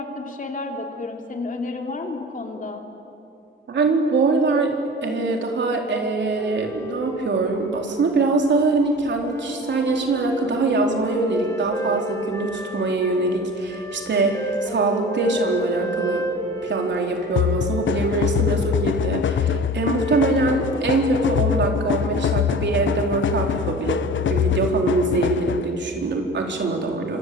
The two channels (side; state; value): both; normal; correlation 0.38